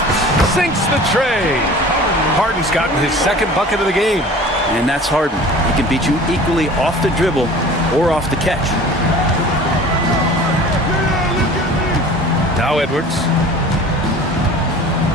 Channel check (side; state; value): both; normal; correlation 0.43